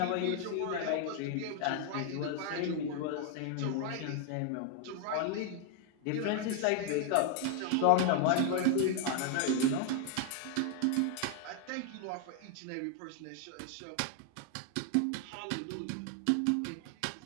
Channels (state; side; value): different; both; correlation 0.00